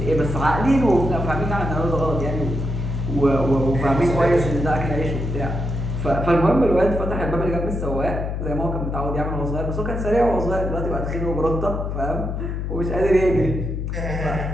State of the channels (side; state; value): left; noise; hum, 3 dB below the sound